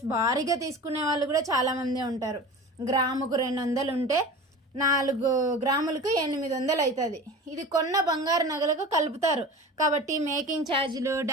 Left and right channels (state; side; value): normal; both; correlation 0.35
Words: భారీగా తీసుకునే వాళ్ళు కూడా చాలామంది ఉంటారు. గ్రాముకు 200 ఉంటే 4 గ్రాములకు 800 అవుతుంది. ఇది కొన్న బంగారు నగలకు కలుపుతారు. కాబట్టి మేకింగ్ ఛార్జీలు,